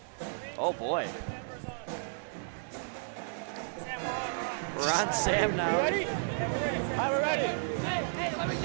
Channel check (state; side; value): silent; left; digital silence